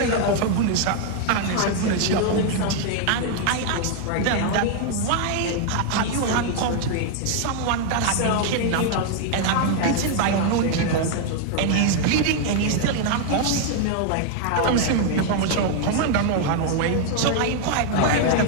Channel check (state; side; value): different; both; correlation 0.00